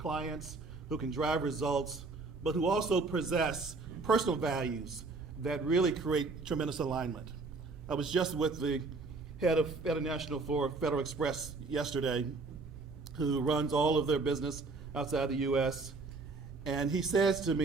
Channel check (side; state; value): left; quieter; 3.9 dB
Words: who can drive results, but who also possess personal values that really create tremendous alignment. I was just with the head of International for Federal Express yesterday, who runs all of their business outside the US. And he says to